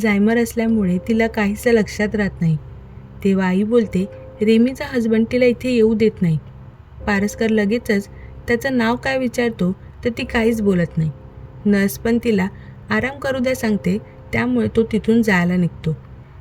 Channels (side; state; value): both; identical; correlation 1.00